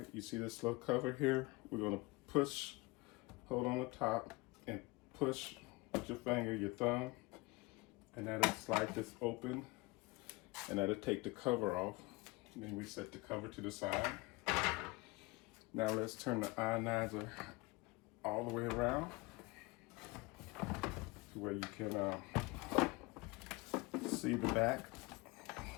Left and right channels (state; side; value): quieter; right; 24.1 dB